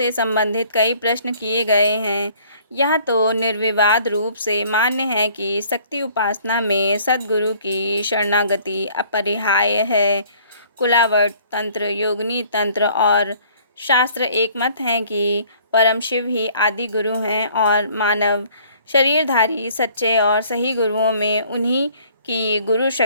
संबंधित कई प्रश्न किए गए हैं। यह तो निर्विवाद रूप से मान्य है कि शक्ति उपासना में सद्गुरु की शरणागति अपरिहार्य है। कुलावट तंत्र, योगिनी तंत्र और शास्त्र एक मत हैं कि परम शिव ही आदि गुरु हैं और मानव शरीरधारी सच्चे और सही गुरुओं में उन्हीं की गुरु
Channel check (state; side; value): inverted; both; correlation -0.56